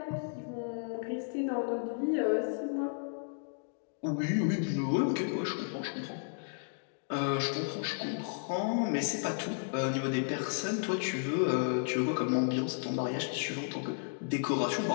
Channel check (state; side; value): silent; right; digital silence